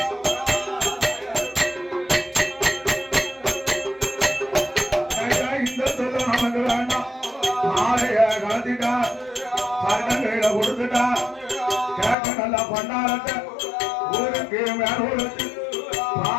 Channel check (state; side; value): drops out; right; at 12.2 s